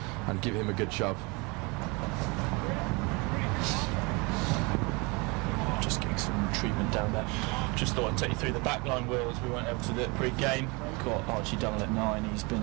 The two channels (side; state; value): left; quieter; 28.0 dB